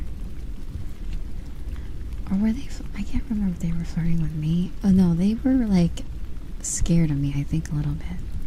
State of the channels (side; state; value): both; identical; correlation 1.00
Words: Or were they? I can't remember if they were flirting with me. Oh no, they were like scared of me, I think, a little bit.